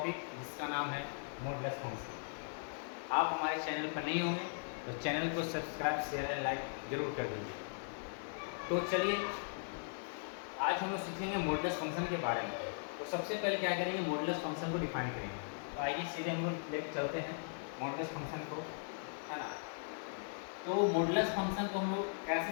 जिसका नाम है मॉडुलस फंक्शन। आप हमारे चैनल पर नहीं होंगे तो चैनल को सब्सक्राइब शेयर एंड लाइक जरूर कर दीजिए। तो चलिए आज हम लोग सीखेंगे मॉडुलस फंक्शन के बारे में। तो सबसे पहले क्या करेंगे, मॉडुलस फंक्शन को डिफाइन करेंगे। तो आइए सीधे हम लोग लेकर चलते हैं मॉडुलस फंक्शन को, है ना। तो मॉडुलस फंक्शन को हम लोग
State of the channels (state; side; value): silent; right; digital silence